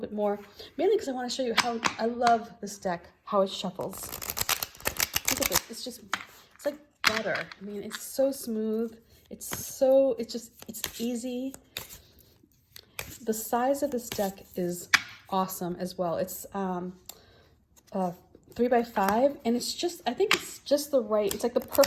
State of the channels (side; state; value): both; identical; correlation 1.00